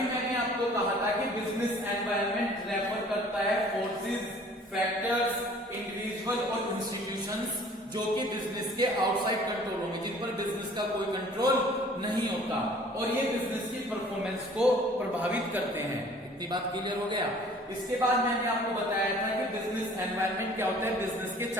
मैंने आपको कहा था कि बिजनेस एनवायरनमेंट रेफर करता है फोर्सेस, फैक्टर्स, इंडिविजुअल और इंस्टीट्यूशंस जो कि बिजनेस के आउटसाइड कंट्रोल होंगे, जिन पर बिजनेस का कोई कंट्रोल नहीं होता और ये बिजनेस की परफॉर्मेंस को प्रभावित करते हैं। इतनी बात क्लियर हो गया। इसके बाद मैंने आपको बताया था कि बिजनेस एनवायरनमेंट क्या होता है, बिजनेस के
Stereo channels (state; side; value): normal; both; correlation 0.52